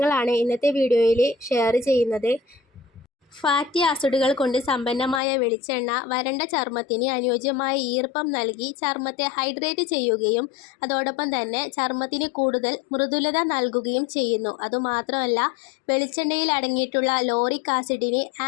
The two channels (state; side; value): drops out; right; at 5.2 s